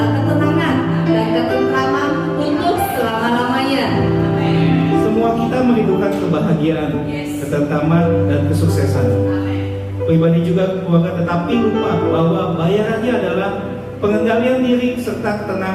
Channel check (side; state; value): both; identical; correlation 1.00